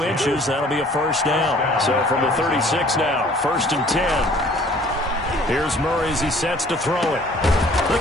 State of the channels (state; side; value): normal; both; correlation 0.54